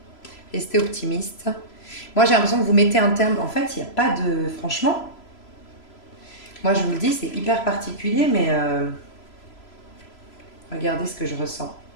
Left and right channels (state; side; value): late; right; 3.0 ms